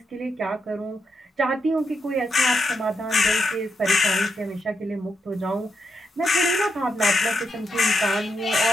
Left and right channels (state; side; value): normal; both; correlation 0.82